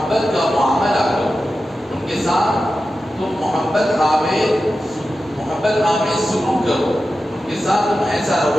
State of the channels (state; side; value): normal; both; correlation 0.92